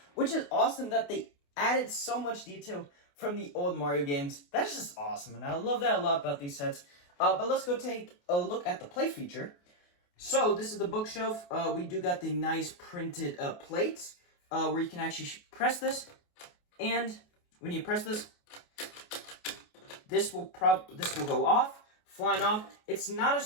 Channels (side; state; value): right; late; 28 ms